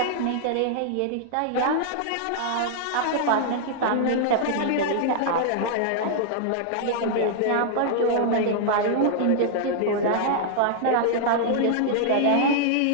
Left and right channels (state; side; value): different; both; correlation -0.01